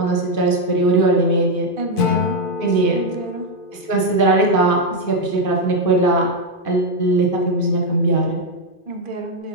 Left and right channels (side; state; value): right; late; 2.5 ms